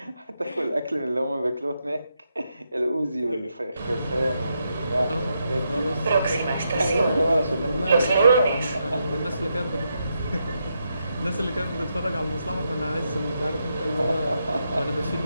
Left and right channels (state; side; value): inverted; both; correlation -0.83